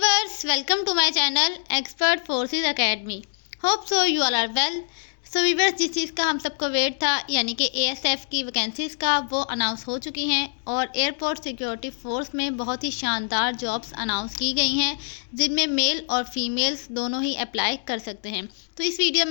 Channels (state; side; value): silent; right; digital silence